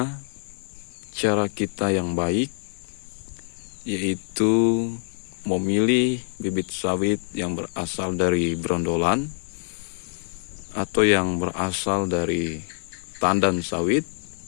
cara kita yang baik, yaitu memilih bibit sawit yang berasal dari brondolan atau yang berasal dari tandan sawit,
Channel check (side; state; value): right; silent; digital silence